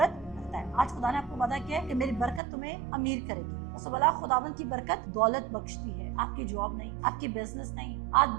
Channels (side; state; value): left; drops out; at 2.4 s